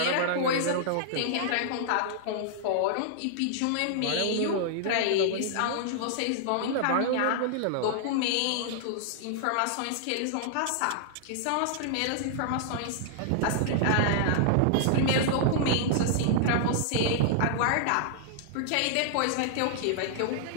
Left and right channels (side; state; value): both; different; correlation -0.01